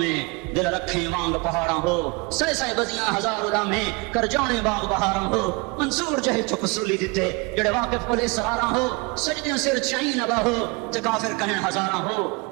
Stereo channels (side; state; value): left; quieter; 28.1 dB